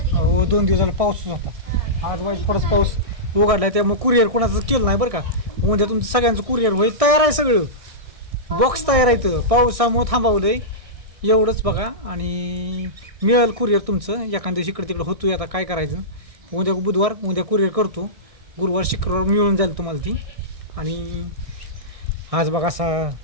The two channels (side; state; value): left; late; 1.6 ms